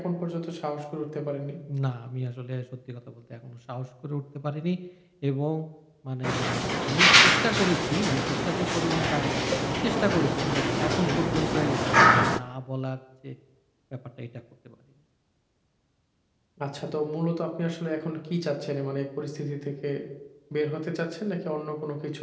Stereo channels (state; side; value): identical; both; correlation 1.00